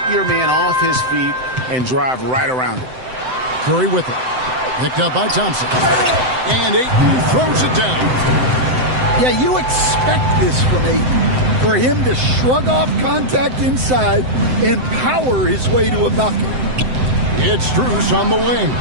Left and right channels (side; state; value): left; late; 7.8 ms